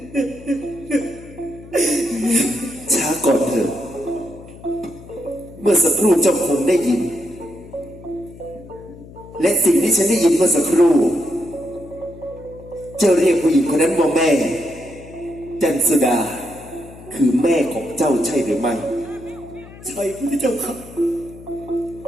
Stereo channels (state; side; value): noise; left; hum, 18 dB below the sound